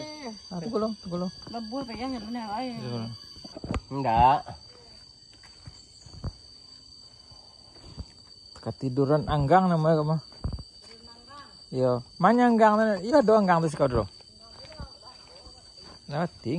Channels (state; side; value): identical; both; correlation 1.00